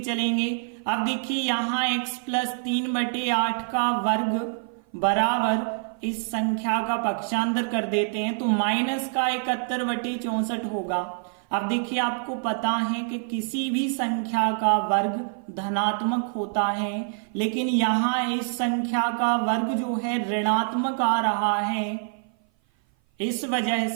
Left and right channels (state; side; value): silent; left; 56 dB below the other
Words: चलेंगे। अब देखिए यहाँ x + 3/8 का वर्ग बराबर इस संख्या का पक्षांतर कर देते हैं तो माइनस का 71/64 होगा। अब देखिए आपको पता है कि किसी भी संख्या का वर्ग धनात्मक होता है, लेकिन यहाँ इस संख्या का वर्ग जो है ऋणात्मक आ रहा है। इस वजह